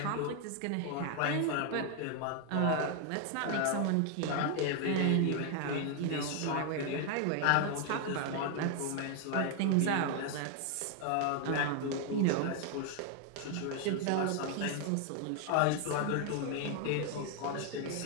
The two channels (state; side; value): different; both; correlation 0.00